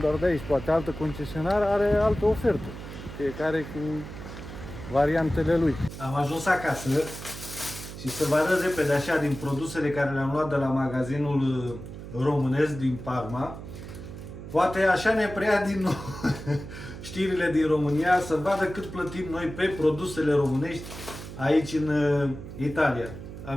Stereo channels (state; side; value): noise; right; hum, 11 dB below the sound